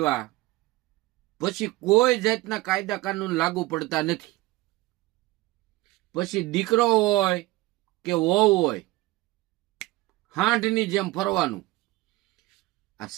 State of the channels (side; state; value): left; quieter; 19.5 dB